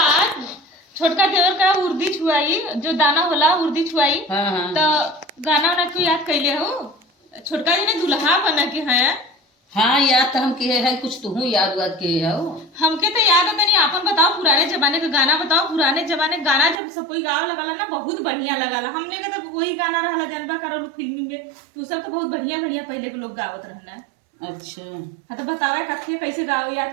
छोटका देवर का उर्दी छुआई, जो दाना होला उर्दी छुआई। तो गाना वाना क्यों याद कैले हो? छोटका जी ने दुल्हा बना के है। हाँ याद तो हम किए है, कुछ तुहू याद वाद किए हो। हमके तो याद है, तनी आपन बताओ पुराने जमाने का गाना बताओ। पुराने जमाने गाना जब सब कोई गाँव लगाला ना बहुत बढ़िया लगाला। हमने का तो वही गाना रहला जनबा करो फिल्मी में, तो सब तो बहुत बढ़िया बढ़िया पहले के लोग गावत रहना। अच्छा हाँ तो बतावे कथिया कैसे गाओ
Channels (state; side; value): drops out; left; at 16.8 s